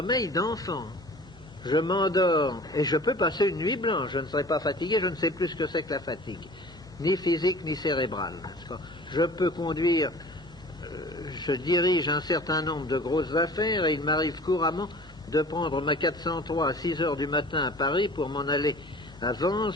d'enfant. Je m'endors et je peux passer une nuit blanche. Je ne serai pas fatigué, je ne sais plus ce que c'est que la fatigue, ni physique ni cérébrale. Je peux conduire, je dirige un certain nombre de grosses affaires et il m'arrive couramment de prendre ma 403 à 6 heures du matin à Paris pour m'en aller à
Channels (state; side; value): normal; both; correlation 0.44